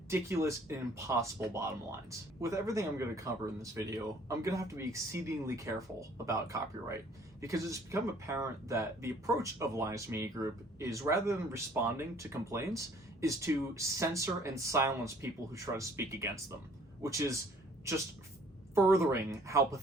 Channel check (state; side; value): normal; both; correlation 0.57